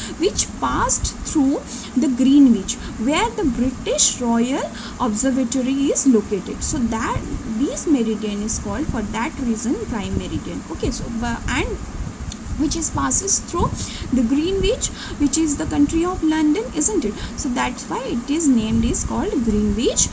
which passed through the Greenwich, where the British Royal Observatory is located. So that this meridian is called, for that reason, prime meridian. Okay, so and which is passes through the Greenwich, which is the country of London, isn't it? So that's why it is named is called Greenwich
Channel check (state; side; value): identical; both; correlation 1.00